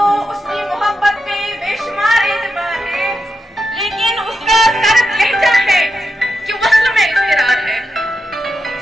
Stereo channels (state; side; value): normal; both; correlation 0.87